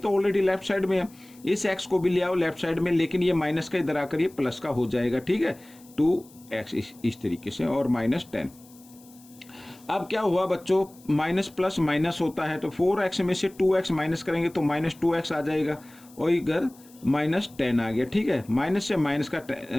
ऑलरेडी लेफ्ट साइड में है, इस x को भी ले आओ लेफ्ट साइड में, लेकिन ये माइनस का इधर आकर ये प्लस का हो जाएगा, ठीक है। 2x इस तरीके से और माइनस 10। अब क्या हुआ बच्चों, माइनस प्लस माइनस होता है, तो 4x में से 2x माइनस करेंगे तो माइनस 2x आ जाएगा, और इधर माइनस 10 आ गया, ठीक है। माइनस से माइनस का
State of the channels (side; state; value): left; noise; hiss, 25 dB below the sound